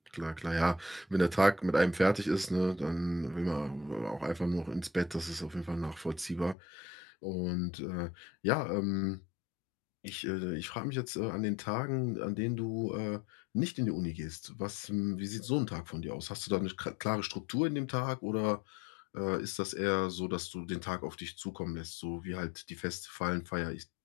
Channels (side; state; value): right; drops out; at 6.6 s